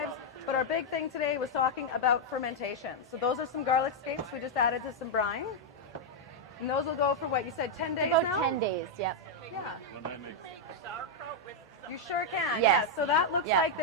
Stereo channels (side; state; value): both; normal; correlation -0.01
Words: But our big thing today was talking about fermentation. So those are some garlic scapes we just added to some brine. And those will go for what you said, 10 days About now? 10 days, yep. Yeah. When I make You sure can. Yes. Yeah. So that looks like